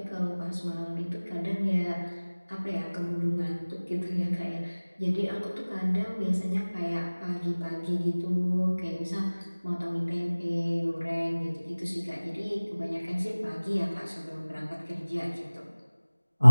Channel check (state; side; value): inverted; both; correlation -1.00